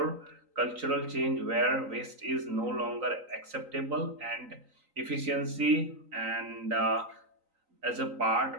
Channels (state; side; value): late; left; 3.9 ms